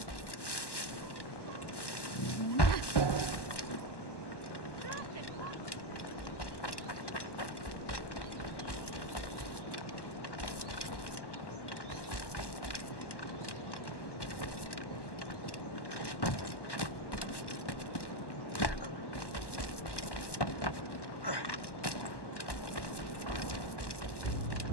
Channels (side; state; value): right; late; 1.1 ms